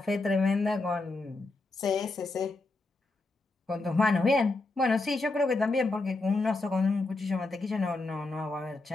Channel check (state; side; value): quieter; right; 3.2 dB